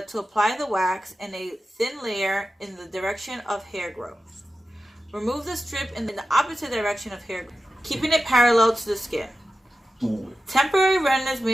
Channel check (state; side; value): normal; both; correlation 0.93